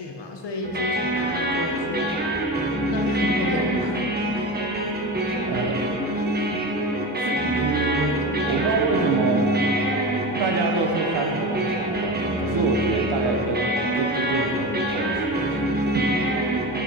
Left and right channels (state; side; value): normal; both; correlation 0.27